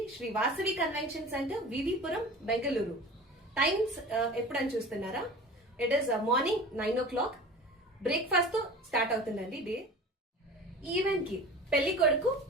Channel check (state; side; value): normal; both; correlation 0.37